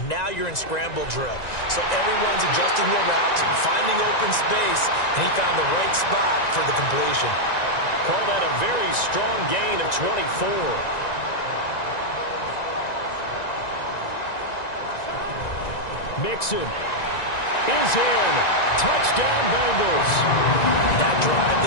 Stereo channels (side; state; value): right; late; 1.9 ms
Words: now you're in scramble drill. So everyone's adjusting their routes, finding open space, and he found the right spot for the completion. Call that a very strong gain of 24. Mixon is in. Touchdown, Bengals. That drive